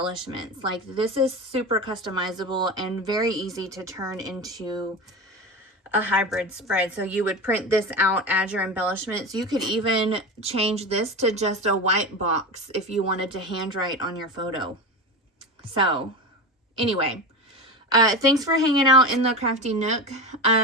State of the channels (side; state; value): both; normal; correlation 0.24